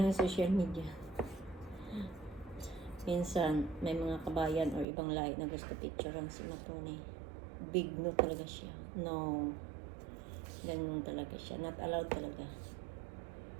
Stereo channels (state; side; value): drops out; left; at 4.9 s